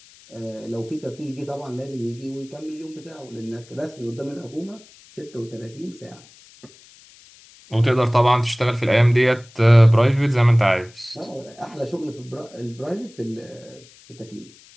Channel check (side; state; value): left; noise; hiss, 25 dB below the sound